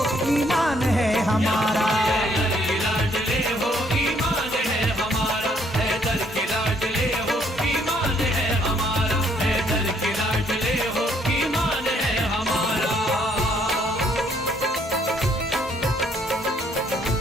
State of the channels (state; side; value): normal; both; correlation 0.67